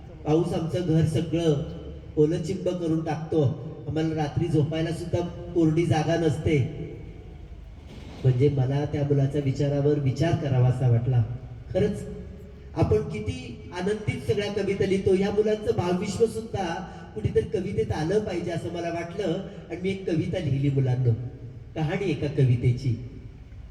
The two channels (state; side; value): identical; both; correlation 1.00